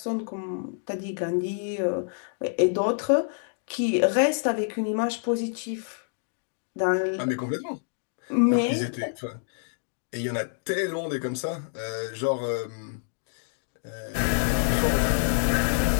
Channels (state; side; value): silent; right; digital silence